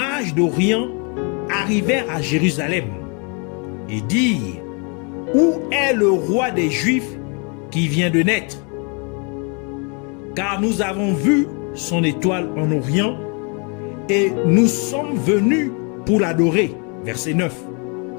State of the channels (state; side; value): quieter; right; 35.4 dB